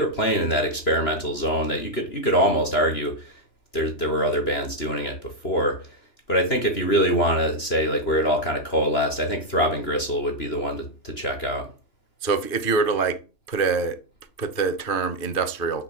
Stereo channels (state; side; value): late; right; 2.9 ms